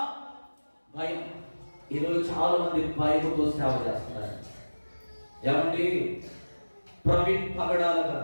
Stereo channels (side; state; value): both; inverted; correlation -1.00